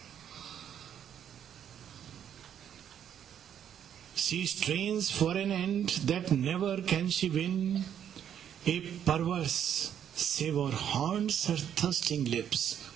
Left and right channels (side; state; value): left; quieter; 9.3 dB